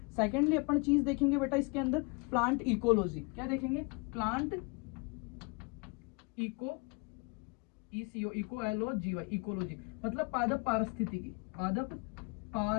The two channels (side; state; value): right; quieter; 29.4 dB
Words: सेकेंडली अपन चीज देखेंगे बेटा इसके अंदर प्लांट इकोलॉजी। क्या देखेंगे, प्लांट इकोलॉजी, इकोलॉजी मतलब पादप पारिस्थितिकी, पादप